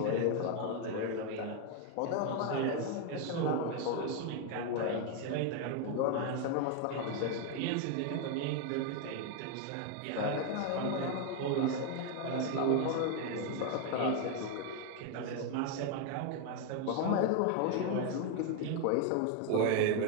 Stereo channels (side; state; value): both; different; correlation 0.01